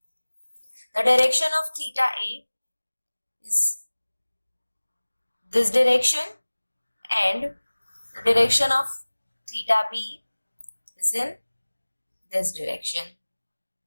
The direction of theta A is this direction and the direction of theta B is in this direction.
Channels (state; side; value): inverted; both; correlation -1.00